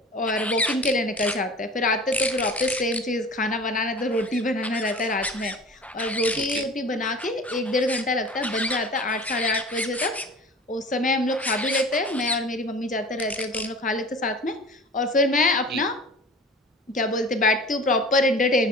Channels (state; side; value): normal; both; correlation 0.40